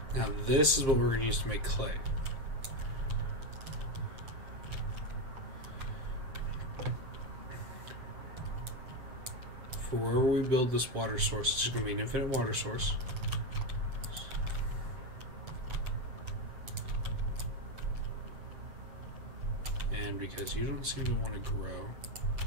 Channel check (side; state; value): left; late; 7.6 ms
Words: Now this is what we're going to use to make clay. For wherever we build this water source, it's going to be an infinite water source. because you don't seem to want to grow.